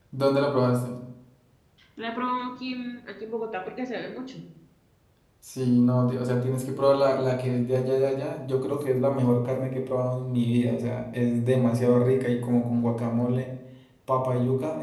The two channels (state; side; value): identical; both; correlation 1.00